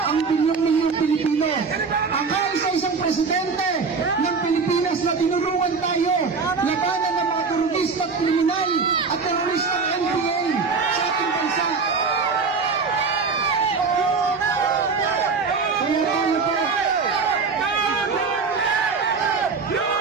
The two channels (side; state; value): left; quieter; 4.9 dB